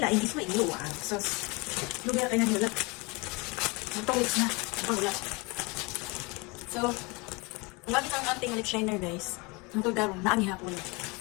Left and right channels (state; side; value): quieter; right; 27.3 dB